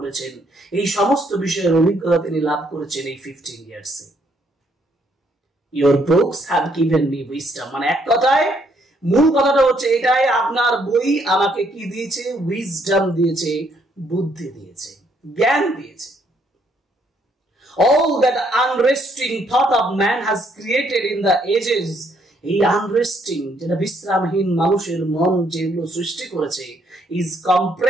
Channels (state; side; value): normal; both; correlation 0.70